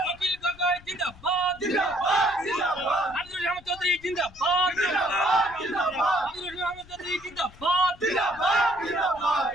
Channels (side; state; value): left; noise; rumble, 22 dB below the sound